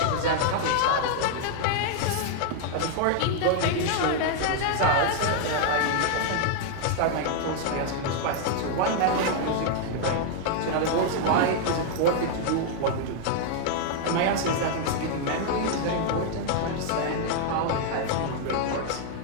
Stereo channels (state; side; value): different; both; correlation 0.00